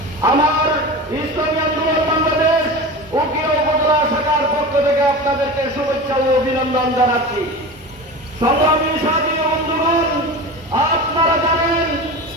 আমার ইসলামী আন্দোলন বাংলাদেশ উকিয়া উপজেলা শাখার পক্ষ থেকে আপনাদেরকে শুভেচ্ছা ও অভিনন্দন জানাচ্ছি। সংগ্রামী সাথী বন্ধুগণ, আপনারা জানেন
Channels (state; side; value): normal; both; correlation 0.30